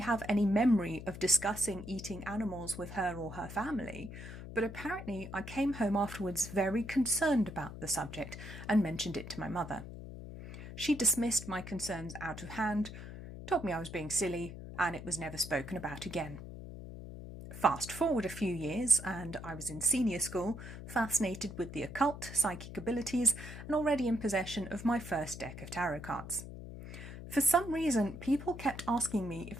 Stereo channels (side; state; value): left; noise; hum, 11 dB below the sound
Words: any memory of discussing eating animals with her or her family, but apparently I came home afterwards very concerned about the subject and mentioned it to my mother. She dismissed my concerns out of hand, told me I was being silly, and it was never spoken about again. Fast forward a few years, and I was in senior school, fascinated with the occult, psychic abilities, and already in possession of my first deck of tarot cards. For some reason, people kept asking me